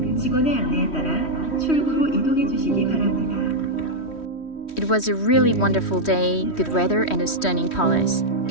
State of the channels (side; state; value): right; late; 3.1 ms